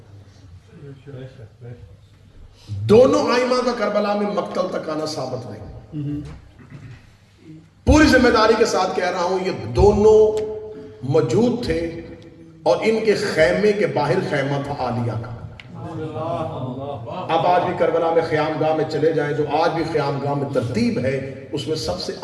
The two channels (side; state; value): both; identical; correlation 1.00